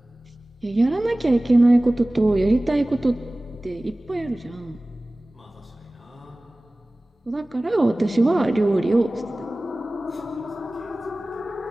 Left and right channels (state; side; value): normal; both; correlation 0.98